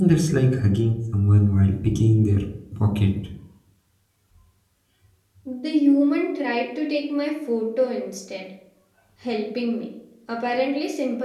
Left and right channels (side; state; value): both; identical; correlation 1.00